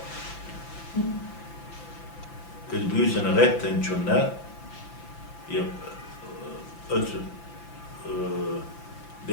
أسبوسن غتن جنا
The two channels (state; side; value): late; right; 5.9 ms